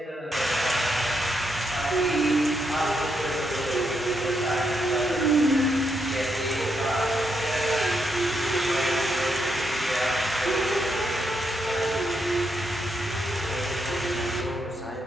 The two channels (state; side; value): normal; both; correlation 0.80